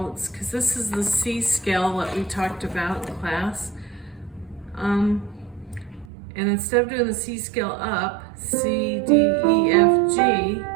because this is the C scale that we talked about in class. And instead of doing the C scale up, C, D, E, F, G,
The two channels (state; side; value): drops out; left; at 6.1 s